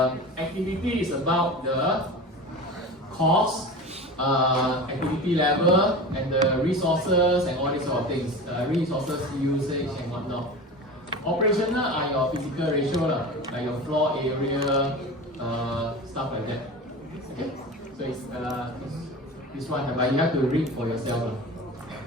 activity is about the cost, activity level, and the resources and all these sort of things, resources usage and whatnot. Operational are your physical ratio, like your floor area, stuff like that. Okay, so it's this one, but you have to read for yourself.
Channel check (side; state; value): both; normal; correlation 0.32